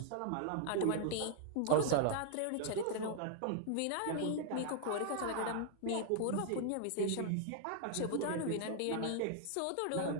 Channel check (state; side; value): different; both; correlation 0.00